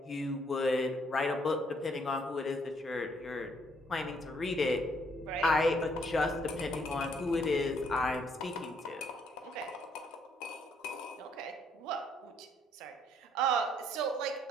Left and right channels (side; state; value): both; normal; correlation 0.68